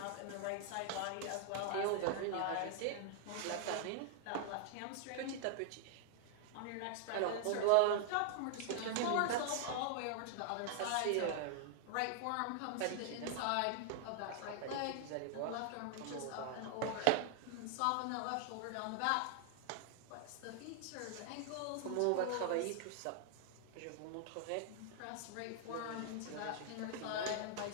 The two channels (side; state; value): both; different; correlation 0.00